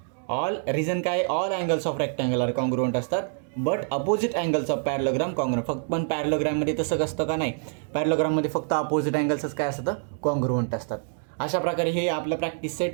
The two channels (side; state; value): left; silent; digital silence